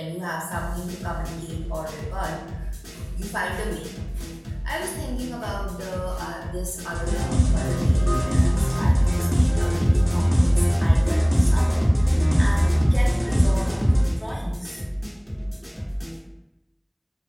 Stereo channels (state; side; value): identical; both; correlation 1.00